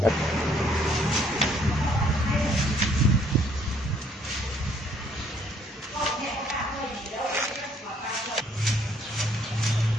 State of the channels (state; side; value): normal; both; correlation 0.65